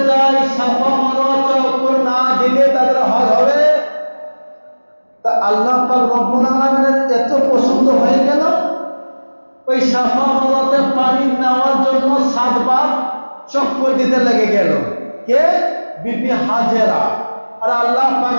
যায় সাফা মারোয়া চক্কর না দিলে তাদের হজ হবে? তা আল্লাহ পাক রব্বুল আলামিনের এত পছন্দ হয়ে গেল, ওই সাফা মারোয়াতে পানি নেওয়ার জন্য 7 বার চক্কর দিতে লেগে গেল। কে? বিবি হাজেরা। আর আল্লাহ পাক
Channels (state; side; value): inverted; both; correlation -1.00